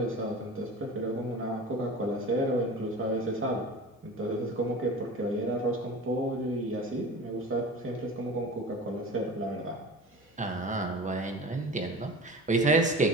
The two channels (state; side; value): normal; both; correlation 0.36